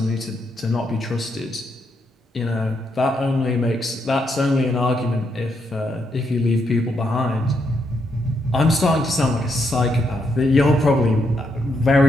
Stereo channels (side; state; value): both; normal; correlation 0.79